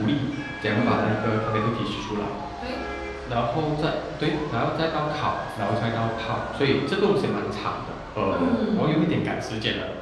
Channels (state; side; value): identical; both; correlation 1.00